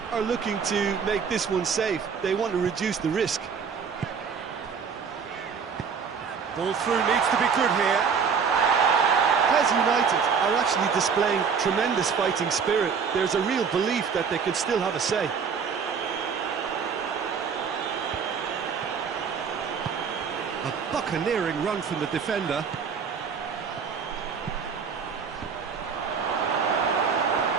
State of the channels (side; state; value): left; quieter; 6.2 dB